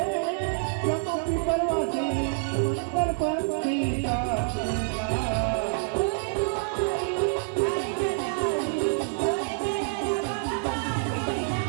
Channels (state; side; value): silent; left; digital silence